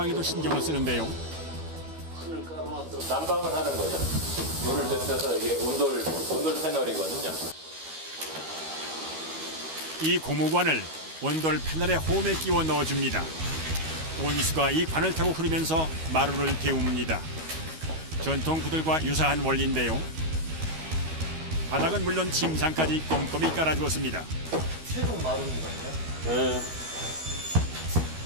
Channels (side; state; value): left; late; 13 ms